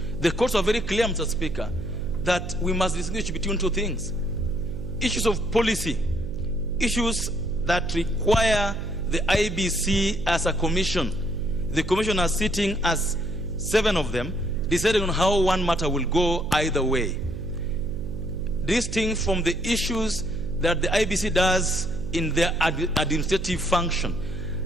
The courts are very clear, Mr. Speaker, that we must distinguish between two things. Issues of policy, issues that require the IBC as a commission. The commission are sitting as 7 of them, deciding on how one matter will go either way. Distinct from the issues that the IBC does in their administrative function.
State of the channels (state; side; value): noise; right; hum, 8 dB below the sound